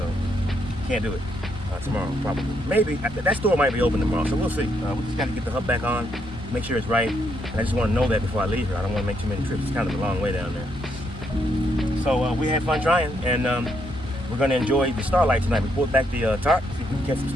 can't do it tomorrow, probably. Maybe. That store might be open tomorrow, so we'll see. We just got to get the hub back on, make sure it's right, and I just want to know that before I leave here. I don't want to make too many trips. It's kind of a long way down there. So we had fun trying, and we're going to enjoy the starlight tonight. We pulled back the tarp, see if we can catch some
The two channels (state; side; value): normal; both; correlation 0.75